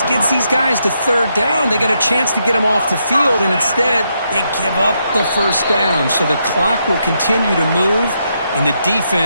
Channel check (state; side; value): inverted; both; correlation -0.80